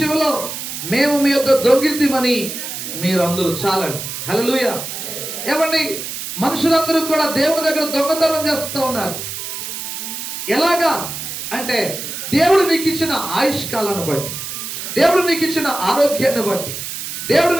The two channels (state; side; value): noise; right; hiss, 7 dB below the sound